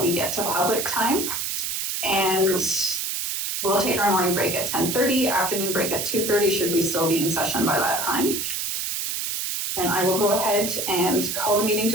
get to public time. And we'll take our morning break at 10:30, afternoon break at 2:30, should we still be in session by that time. And I will go ahead and call the meeting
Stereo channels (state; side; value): noise; right; hiss, 2 dB below the sound